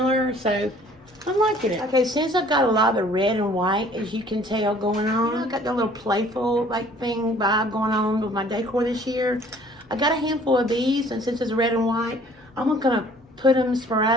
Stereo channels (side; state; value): both; normal; correlation 0.55